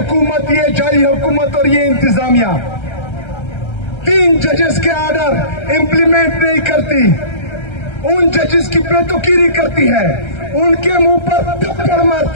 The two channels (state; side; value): late; right; 1.3 ms